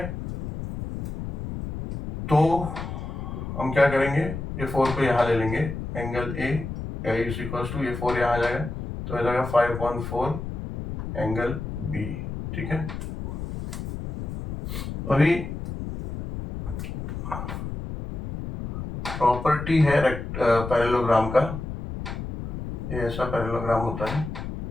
तो हम क्या करेंगे, ये 4 को यहाँ ले लेंगे. Angle A is equals to, ये 4 यहाँ आ जाएगा तो आ जाएगा 5/4 एंगल बी. ठीक है, अभी प्रॉपर्टी है पैरेललोग्राम का. ये ऐसा पैरेललोग्राम होता है.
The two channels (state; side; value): noise; left; rumble, 6 dB below the sound